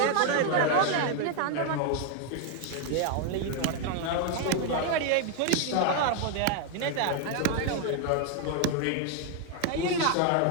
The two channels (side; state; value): both; different; correlation 0.00